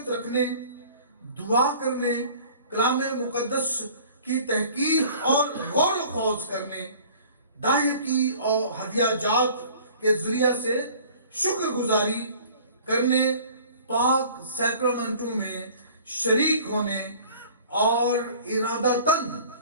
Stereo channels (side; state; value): both; inverted; correlation -0.48